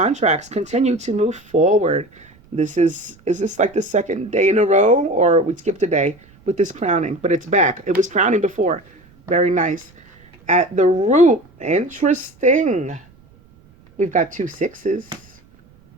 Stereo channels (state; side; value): noise; right; rumble, 29 dB below the sound